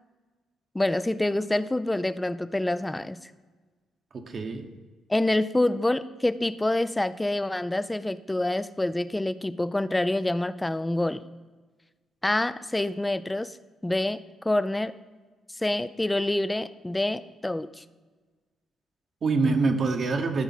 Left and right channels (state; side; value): normal; both; correlation 0.95